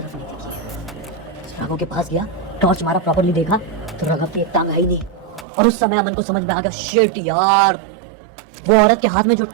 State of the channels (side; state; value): left; drops out; at 5.5 s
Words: नहीं दिखी है। राघव के पास गया, टॉर्च मारा, प्रॉपर्ली देखा तो राघव की एक टांग है ही नहीं। और उस समय अमन को समझ में आ गया, शिट यार, वो औरत के हाथ में जो